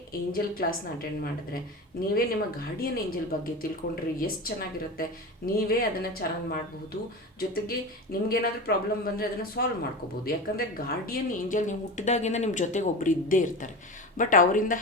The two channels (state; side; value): normal; both; correlation 0.27